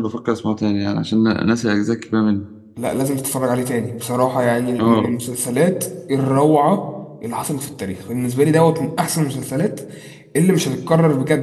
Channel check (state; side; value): identical; both; correlation 1.00